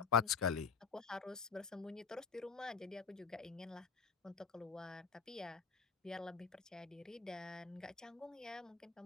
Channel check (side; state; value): right; quieter; 5.7 dB